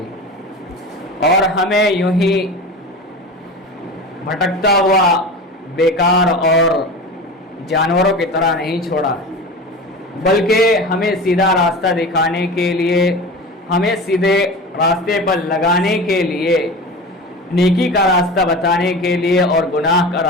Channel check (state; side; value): normal; both; correlation 0.31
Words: اور ہمیں یوں ہی بھٹکتا ہوا بیکار اور جانوروں کی طرح نہیں چھوڑا، بلکہ ہمیں سیدھا راستہ دکھانے کے لیے، ہمیں سیدھے راستے پر لگانے کے لیے، نیکی کا راستہ بتانے کے لیے اور گناہ کا